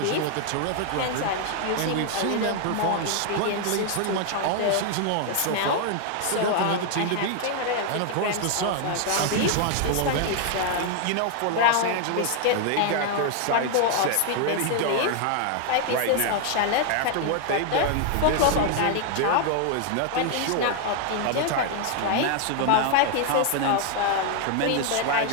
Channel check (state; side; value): different; both; correlation 0.00